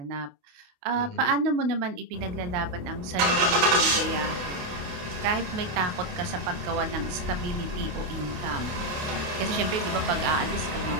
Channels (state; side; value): late; left; 28 ms